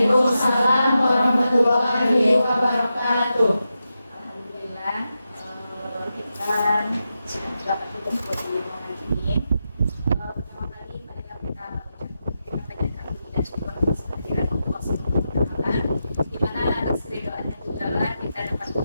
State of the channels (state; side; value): inverted; both; correlation -0.89